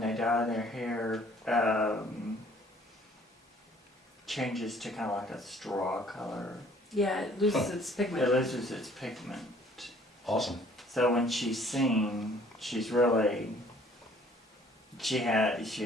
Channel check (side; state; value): both; normal; correlation 0.57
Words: they dye their hair, changes to kind of like a straw color. Yeah, it loses its pigment. It loses its pigment. Awesome. So when she's seen, she's really, she